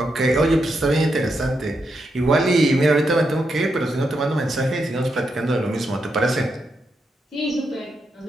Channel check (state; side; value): normal; both; correlation 0.83